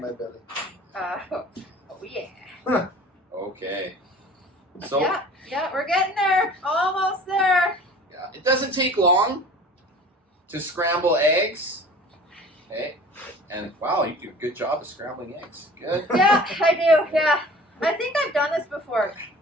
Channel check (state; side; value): normal; both; correlation 0.44